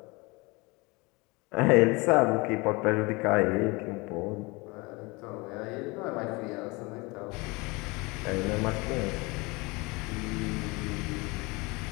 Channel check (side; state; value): right; quieter; 25.7 dB